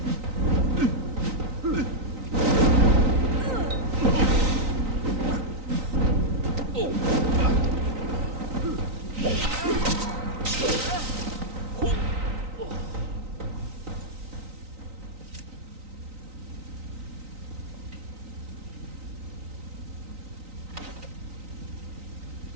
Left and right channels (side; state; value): left; late; 3.9 ms